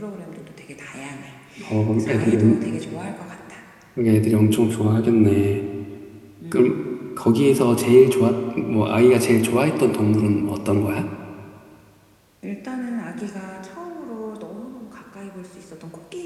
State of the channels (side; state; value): both; identical; correlation 1.00